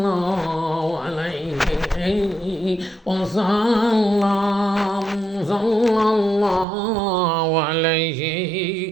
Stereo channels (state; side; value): drops out; left; at 6.7 s